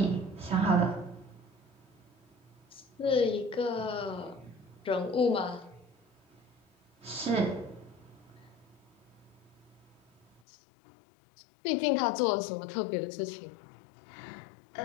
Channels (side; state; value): right; drops out; at 10.4 s